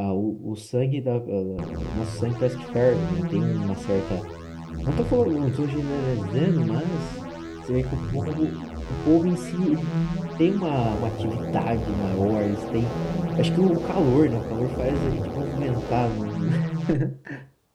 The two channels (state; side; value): identical; both; correlation 1.00